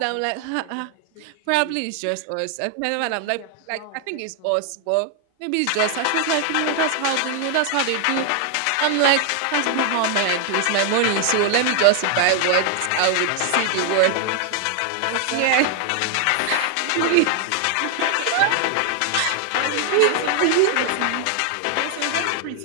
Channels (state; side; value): different; both; correlation 0.00